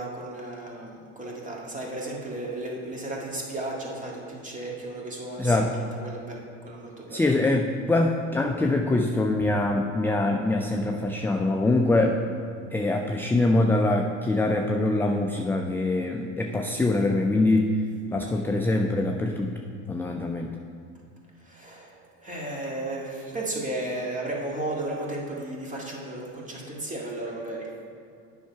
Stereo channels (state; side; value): normal; both; correlation 0.70